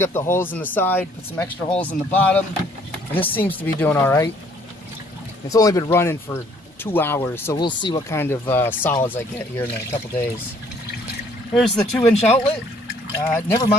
up the holes in the side, put some extra holes in the bottom, and this seems to be doing all right. It's only been running for 2 hours, so we'll see what kind of solids I get here in a couple days. Here's the 2-inch outlet. Never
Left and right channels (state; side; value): normal; both; correlation 0.61